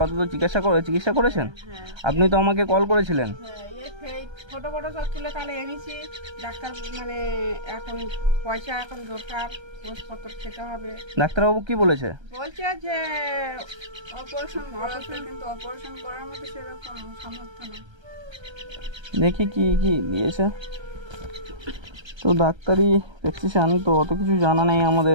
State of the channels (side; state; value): left; late; 1.3 ms